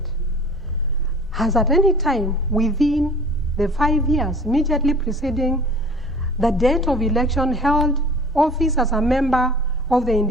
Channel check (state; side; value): normal; both; correlation 0.45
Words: has at any time within the 5 years immediately preceding the date of election held office as a member of the